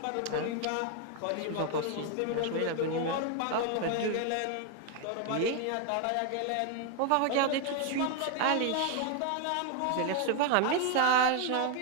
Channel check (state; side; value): different; both; correlation 0.01